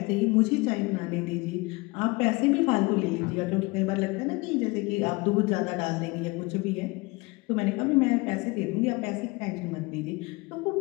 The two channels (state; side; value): quieter; right; 25.0 dB